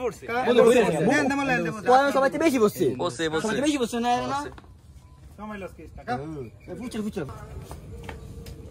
পড়ছে দেন দেমালে এন্ড বসে পয়সা সবাই বেশি বসছে সবাই সবাই বেশি বসছে না না সময় লস কেস টাকা ফুচর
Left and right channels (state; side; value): identical; both; correlation 1.00